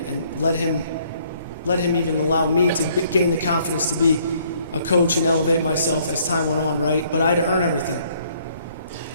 let him even allow me to gain the confidence to be a coach and elevate myself as time went on, right? But I had to earn everything.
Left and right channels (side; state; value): both; inverted; correlation -0.64